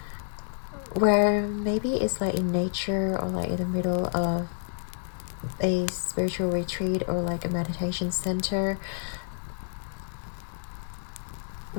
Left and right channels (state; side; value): silent; right; digital silence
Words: where maybe it's like in nature, or like in the middle of a spiritual retreat, or like a meditation center,